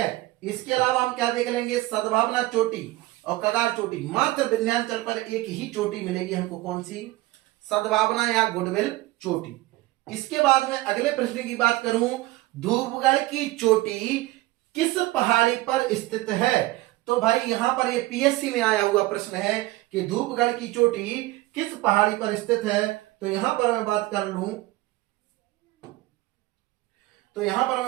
इसके अलावा हम क्या देख लेंगे, सद्भावना चोटी और कगार चोटी। मात्र विंध्याचल पर एक ही चोटी मिलेगी हमको, कौन सी? सद्भावना या गुडविल चोटी। इसके बाद में अगले प्रश्न की बात करूं, धूपगढ़ की चोटी किस पहाड़ी पर स्थित है? तो भाई यहां पर ये पीएससी में आया हुआ प्रश्न है कि धूपगढ़ की चोटी किस पहाड़ी पर स्थित है। तो यहां पर मैं बात कर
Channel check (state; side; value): quieter; left; 18.9 dB